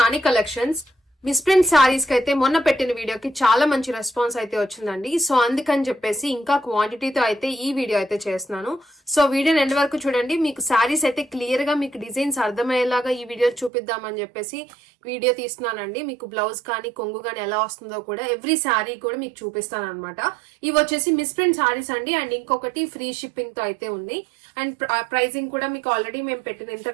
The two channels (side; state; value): left; drops out; at 13.7 s